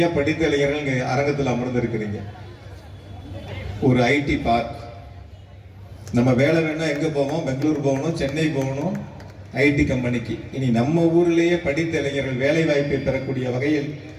படித்த இளைஞர்கள் இங்க அரங்கத்தில் அமர்ந்திருக்கிறீங்க. ஒரு ஐடி பார்க். நம்ம வேலை வேணா எங்க போவோம்? பெங்களூர் போகணும், சென்னை போகணும் ஐடி கம்பெனிக்கு. இனி நம்ம ஊரிலேயே படித்த இளைஞர்கள் வேலை வாய்ப்பை பெறக்கூடிய வகையில்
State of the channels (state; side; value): identical; both; correlation 1.00